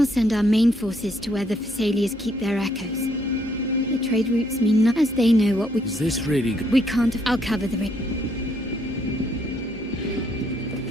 send our main forces to where the Thessalians keep their echoes. The trade routes mean nothing, as they know what we... Is this really good? We can't... I'll cover the ring.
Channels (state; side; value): noise; left; hum, 21 dB below the sound